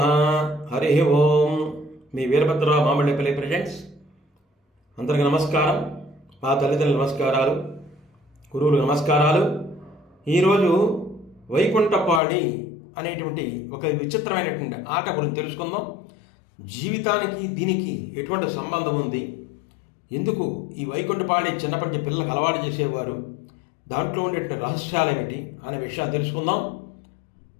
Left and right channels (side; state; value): right; drops out; at 12.2 s